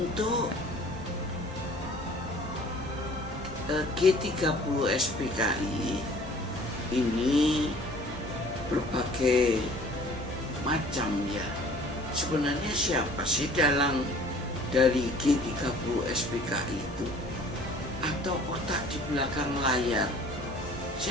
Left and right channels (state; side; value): normal; both; correlation 0.50